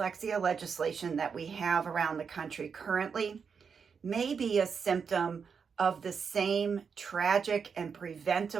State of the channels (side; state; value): left; quieter; 6.1 dB